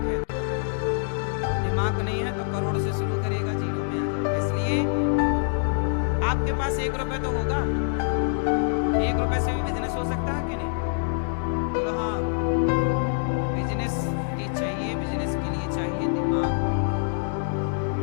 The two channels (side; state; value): right; silent; digital silence